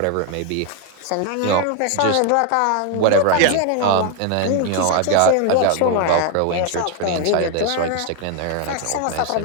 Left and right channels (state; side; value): different; both; correlation 0.01